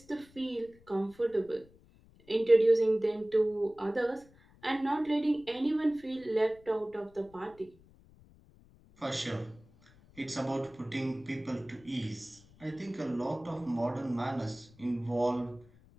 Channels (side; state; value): left; noise; rumble, 26 dB below the sound